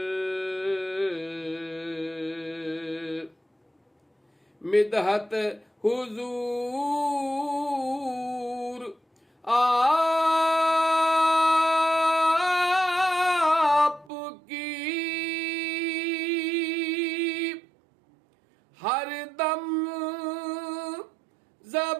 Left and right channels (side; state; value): left; drops out; at 14.1 s